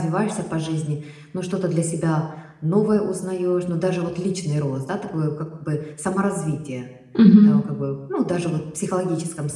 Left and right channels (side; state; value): both; identical; correlation 1.00